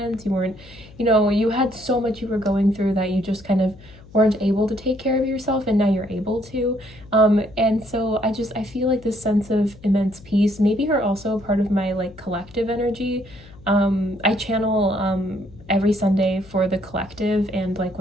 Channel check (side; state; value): left; noise; hum, 21 dB below the sound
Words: you had so much you were going through that you just kind of weren't able to take care of yourself, and now you're able to. And so I feel like this sense of immense peace. Maybe you're also part of my like collective energy. I channel every Sunday for the collective and like